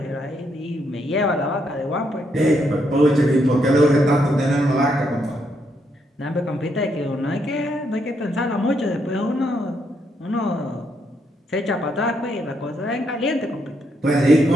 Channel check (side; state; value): both; normal; correlation 0.76